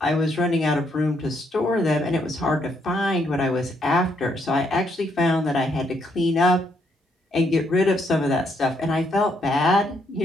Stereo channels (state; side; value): normal; both; correlation 0.74